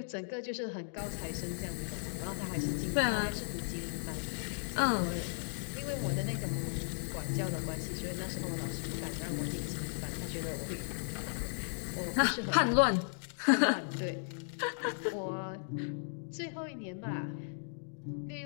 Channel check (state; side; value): silent; right; digital silence